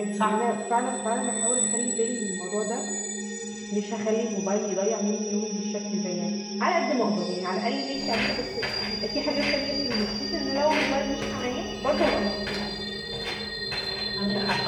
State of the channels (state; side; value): identical; both; correlation 1.00